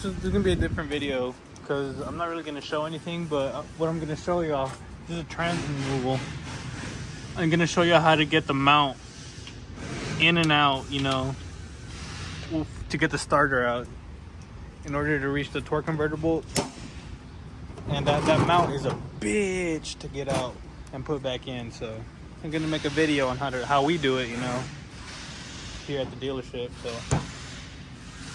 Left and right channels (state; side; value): identical; both; correlation 1.00